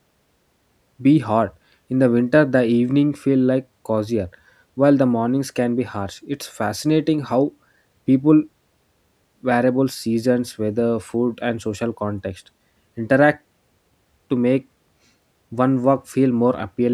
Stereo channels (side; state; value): both; identical; correlation 1.00